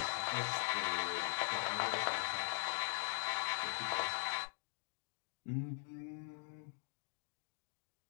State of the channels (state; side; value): silent; right; digital silence